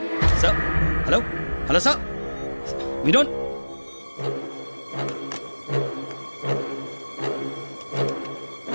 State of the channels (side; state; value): both; inverted; correlation -1.00